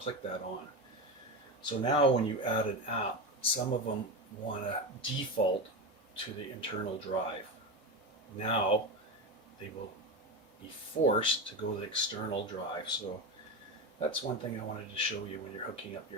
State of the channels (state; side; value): normal; both; correlation 0.19